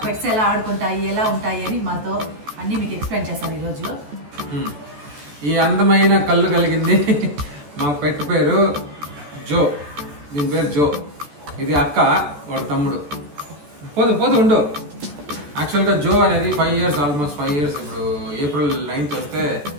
పెట్స్ ఎలా ఆడుకుంటాయి, ఎలా ఉంటాయి అని మాతో అన్ని మీకు ఎక్స్ప్లెయిన్ చేస్తాను ఈరోజు. ఈ అందమైన కళ్ళు కలిగింది మా పెట్ పేరు జో. దీని పేరు జో. ఇది అక్క, వాడు తమ్ముడు. పోదు పోదు ఉండు. యాక్చువల్గా జో అనేది 5 years, ఆల్మోస్ట్ 5 years. ఇప్పుడు April 9th వస్తే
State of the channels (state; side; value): late; left; 14 ms